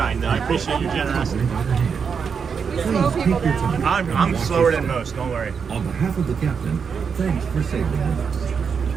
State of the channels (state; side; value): quieter; left; 6.3 dB